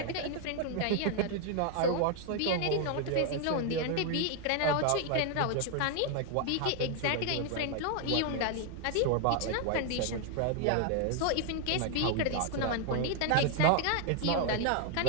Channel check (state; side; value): different; both; correlation 0.00